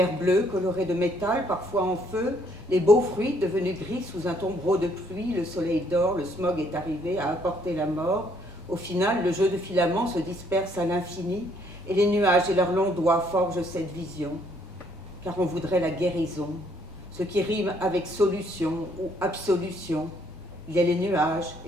bleue colorée de métal, parfois en feu, les beaux fruits devenus gris sous un tombereau de pluie, le soleil dort, le smog est arrivé à apporter la mort. Au final, le jeu de filaments se disperse à l'infini et les nuages et leurs longs doigts forgent cette vision. Car on voudrait la guérison, ce qui rime avec solution ou absolution. Il y a les nuages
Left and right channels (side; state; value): both; normal; correlation 0.67